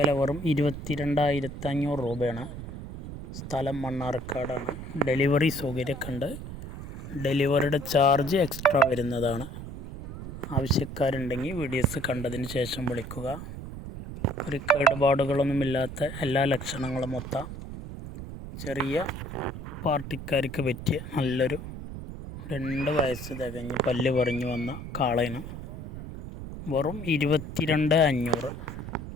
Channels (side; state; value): right; noise; rumble, 10 dB below the sound